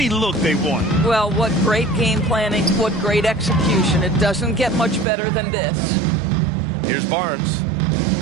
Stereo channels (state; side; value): drops out; left; at 5.1 s